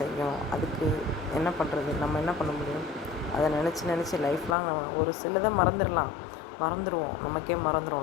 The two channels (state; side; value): drops out; right; at 4.5 s